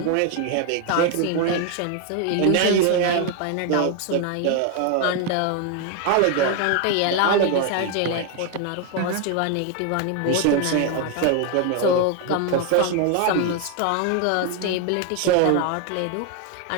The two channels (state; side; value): different; both; correlation 0.01